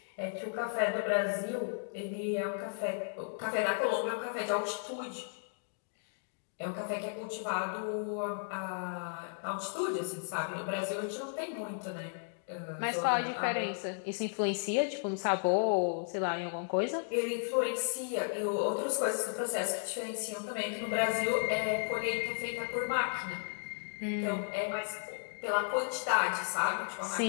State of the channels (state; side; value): silent; right; digital silence